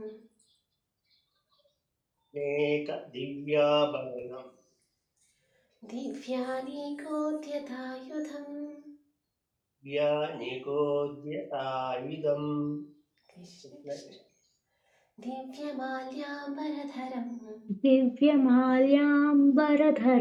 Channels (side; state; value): both; identical; correlation 1.00